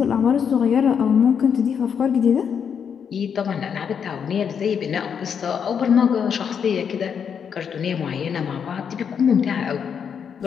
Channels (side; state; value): right; quieter; 7.3 dB